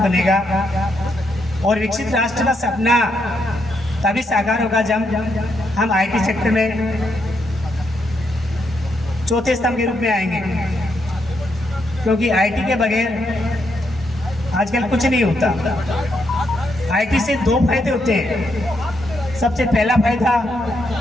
और विकसित राष्ट्र का सपना तभी साकार होगा जब हम IT सेक्टर में चौथे स्तंभ के रूप में आएंगे, क्योंकि IT के बगैर आजकल कुछ नहीं होता। IT से 2 फायदे होते हैं। सबसे पहला फायदा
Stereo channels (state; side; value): normal; both; correlation 0.79